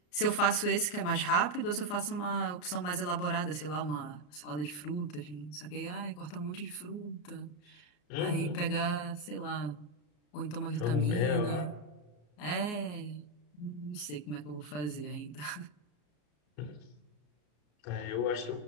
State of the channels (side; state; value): right; late; 34 ms